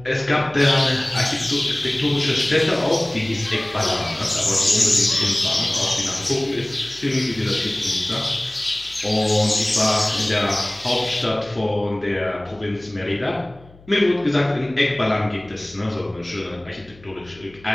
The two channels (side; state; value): left; noise; hum, 24 dB below the sound